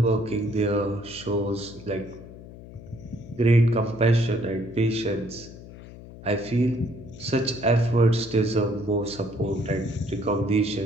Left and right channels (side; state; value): left; noise; hum, 16 dB below the sound